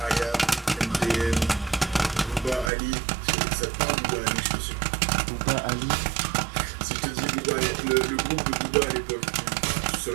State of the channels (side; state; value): left; drops out; at 2.7 s